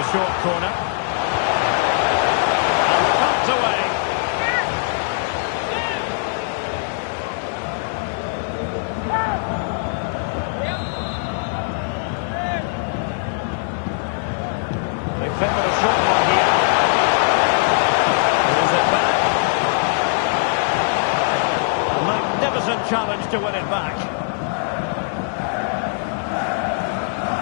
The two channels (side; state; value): right; silent; digital silence